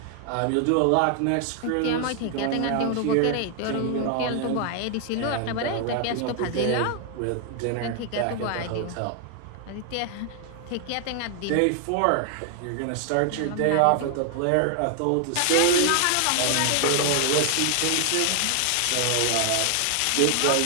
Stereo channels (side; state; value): both; different; correlation 0.00